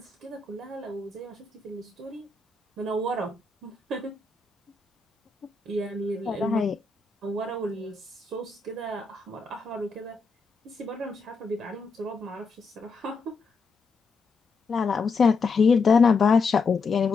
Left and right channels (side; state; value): right; quieter; 4.3 dB